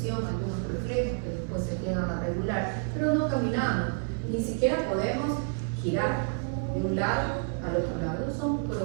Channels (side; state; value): left; silent; 57 dB below the other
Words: algunos reflejos que después se llegan a regular, pero no caminamos, ni siquiera podemos girar de un lado al otro lado. Son